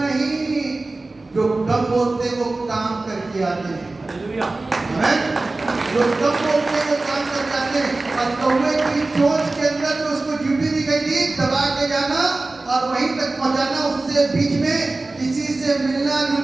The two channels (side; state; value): left; quieter; 3.2 dB